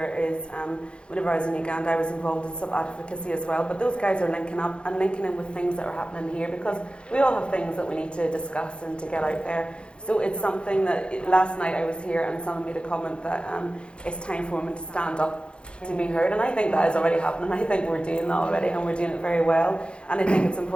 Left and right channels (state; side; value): late; right; 0.056 ms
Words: is, whenever I was in Uganda, I was involved in sub-advocacy as well. But those guys are linking up and linking in with things that are happening here, because we all have things that we need to discuss and to get out there. So it's something that, last night I was here and someone made a comment that it's time for women to stand up to be heard, and I think that is already happening. I think we're doing that already, and we're doing it very well, and I think it's